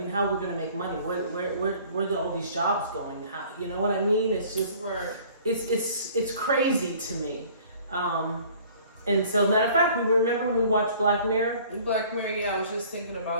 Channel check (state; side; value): inverted; both; correlation -0.52